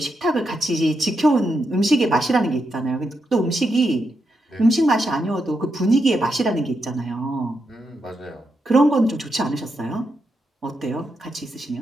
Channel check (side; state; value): both; normal; correlation 0.84